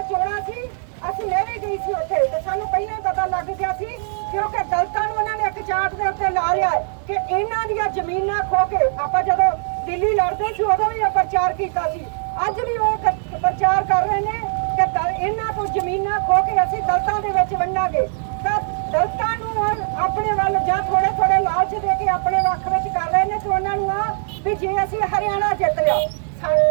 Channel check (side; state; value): left; silent; 56 dB below the other